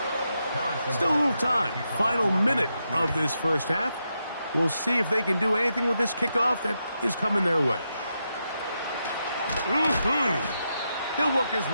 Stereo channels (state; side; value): inverted; both; correlation -0.85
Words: Still a little time. Final minute of this first half. We'll see if they can do anything with this kickoff that is coming their way. He'll work his